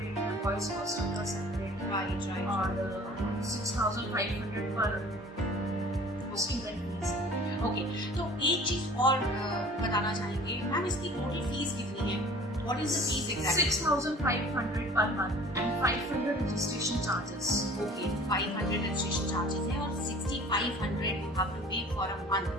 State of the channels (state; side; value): normal; both; correlation 0.47